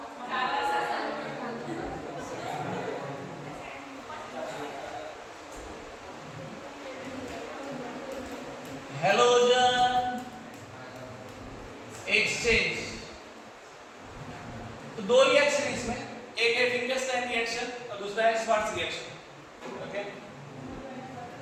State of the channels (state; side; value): identical; both; correlation 1.00